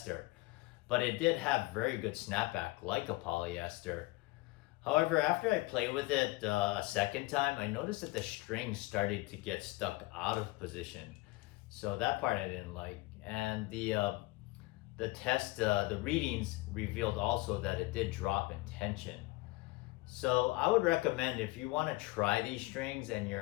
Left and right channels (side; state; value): right; quieter; 21.7 dB